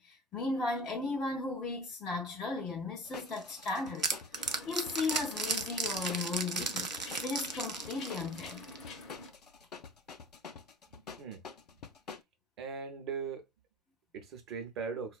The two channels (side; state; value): both; normal; correlation 0.41